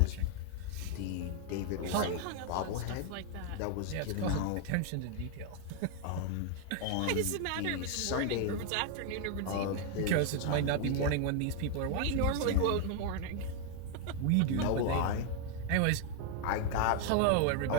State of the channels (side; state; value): both; different; correlation 0.00